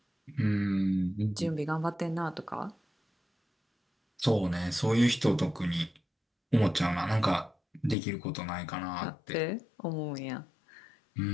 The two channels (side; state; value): right; drops out; at 8.0 s